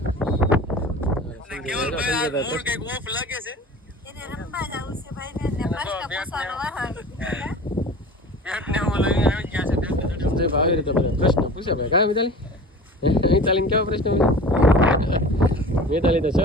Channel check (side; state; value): both; normal; correlation 0.39